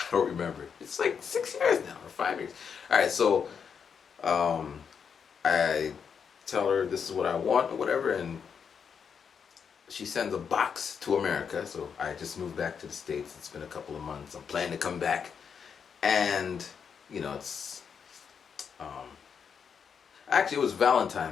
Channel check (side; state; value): right; quieter; 6.7 dB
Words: don't remember. It's like 6 years now, or 5 years. Alright, so I tell her this is what I want or whatever, and she sends a box to America. So I just moved back to the States. It's been a couple of months. I'm planning to come back. And, it's actually, it was